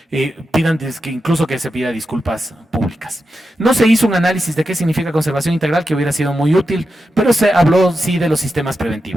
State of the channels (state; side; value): normal; both; correlation 0.89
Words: pidan que incluso que se pida disculpas públicas. No se hizo un análisis de qué significa conservación integral, que hubiera sido muy útil, pero se habló sí de los sistemas